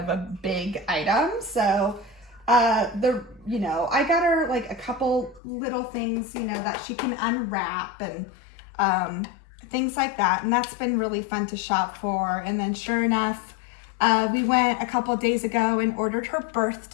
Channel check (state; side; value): drops out; right; at 5.4 s